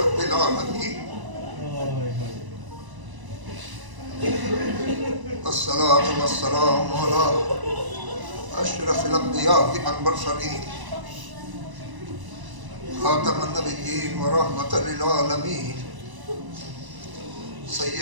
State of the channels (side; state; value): left; late; 1.0 ms